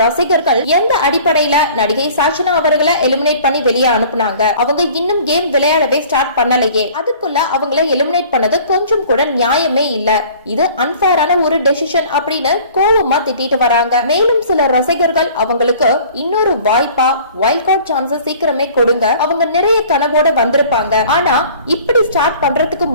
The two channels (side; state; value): both; inverted; correlation -0.49